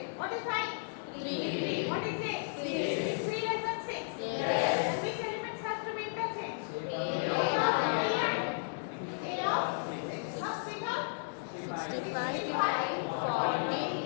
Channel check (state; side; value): silent; right; digital silence